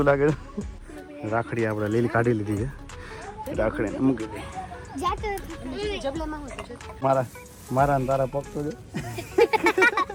લાગે. રાખડી આપણે લીલી કાઢી લીધી છે. રાખડીને મૂકી દઈ. મારા તારા પગ તો જો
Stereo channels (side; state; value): both; identical; correlation 1.00